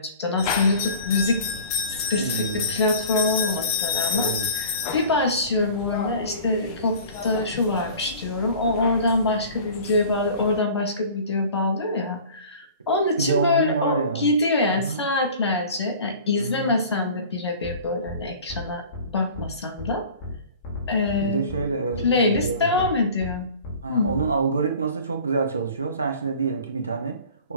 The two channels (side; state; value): both; inverted; correlation -0.43